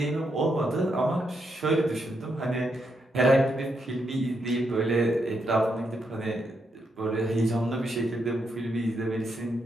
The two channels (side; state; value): both; normal; correlation 0.80